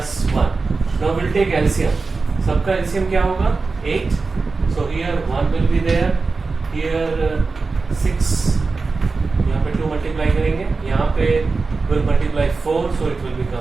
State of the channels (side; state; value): left; quieter; 4.1 dB